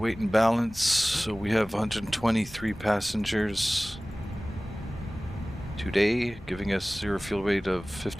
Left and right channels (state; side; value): normal; both; correlation 0.98